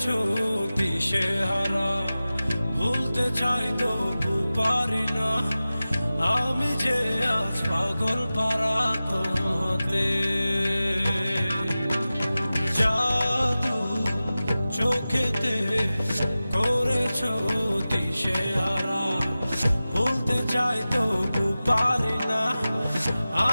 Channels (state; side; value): inverted; both; correlation -0.96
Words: দিশেহারা, ভুলতে চাই তবু পারি না। আমি যে আজ পাগল পারা তোমাতে। জাদু চোখেতে করেছো দিশেহারা, ভুলতে চাই তবু পারি না।